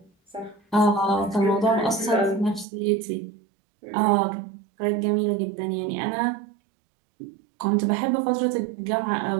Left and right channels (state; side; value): drops out; left; at 2.7 s